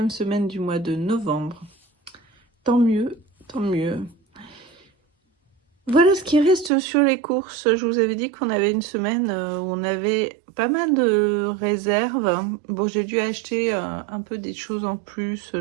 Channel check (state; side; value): drops out; left; at 6.7 s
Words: semaine du mois de novembre. Tant mieux, tant mieux. Voilà ce qui reste sur les courses. Je vous avais dit qu'on avait une semaine où on avait pas mal de réserves. Bon, j'ai dû acheter un peu des choses en plus,